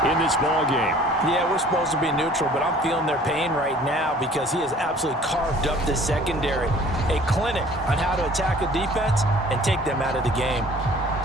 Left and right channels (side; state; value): both; normal; correlation 0.51